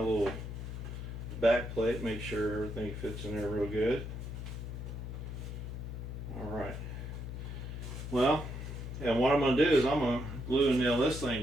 back plate, make sure everything fits in there real good. Alright. Well, and what I'm going to do is I'm going to glue and nail this thing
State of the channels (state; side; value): noise; left; hum, 7 dB below the sound